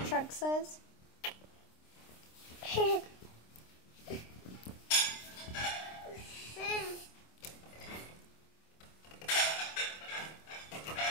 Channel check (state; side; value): late; right; 26 ms